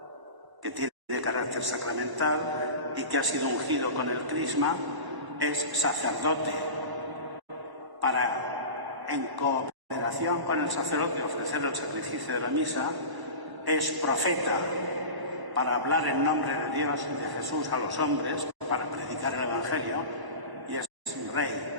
que tiene carácter sacramental y que ha sido ungido con el crisma es sacerdote para, en cooperación con el sacerdote, ofrecer el sacrificio de la misa. Es profeta para hablar en nombre de Dios y de Jesús a los hombres, para predicar el Evangelio, y es rey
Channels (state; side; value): late; left; 1.0 ms